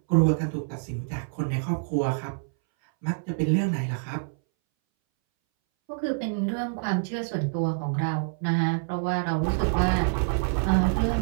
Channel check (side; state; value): left; silent; 61 dB below the other